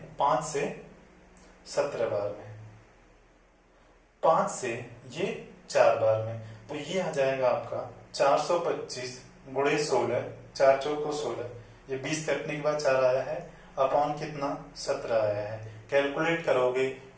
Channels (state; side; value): identical; both; correlation 1.00